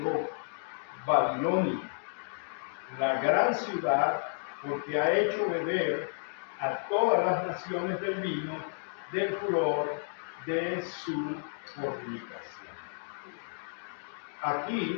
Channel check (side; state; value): right; silent; digital silence